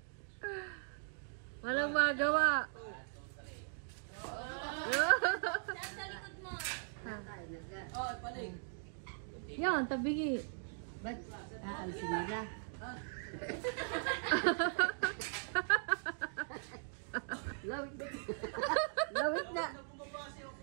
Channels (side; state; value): left; silent; digital silence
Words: Walang magawa. Yan, tabigi. Ba't aalisin nila? Lawit na.